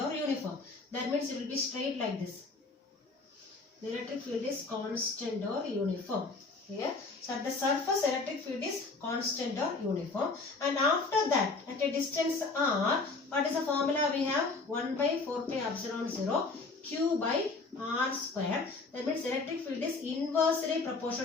or uniform. That means it will be straight like this. The electric field is constant or uniform. Here. So at the surface, electric field is constant or uniform. And after that, at a distance r, what is the formula we have? 1 by 4 pi epsilon 0 q by r square. That means electric field is inversely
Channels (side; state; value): right; quieter; 3.8 dB